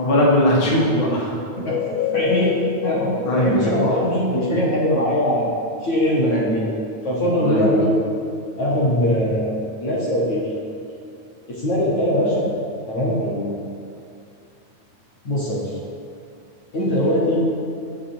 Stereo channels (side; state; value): right; late; 9.2 ms